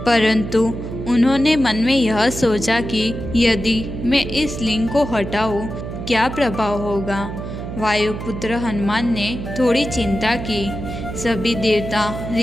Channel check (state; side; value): noise; right; hum, 7 dB below the sound